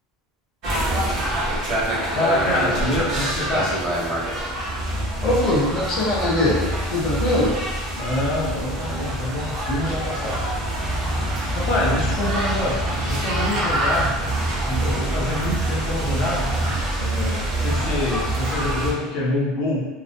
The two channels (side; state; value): both; normal; correlation 0.46